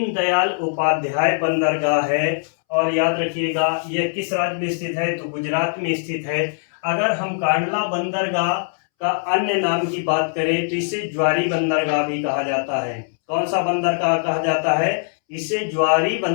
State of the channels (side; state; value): right; silent; 65 dB below the other